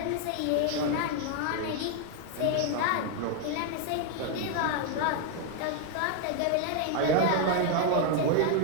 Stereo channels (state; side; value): different; both; correlation 0.00